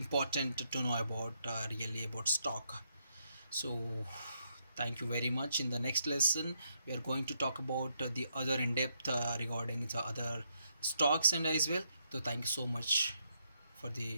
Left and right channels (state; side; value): inverted; both; correlation -0.77